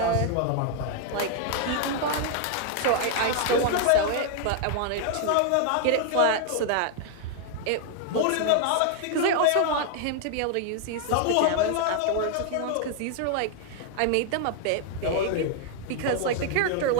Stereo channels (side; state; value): both; different; correlation 0.00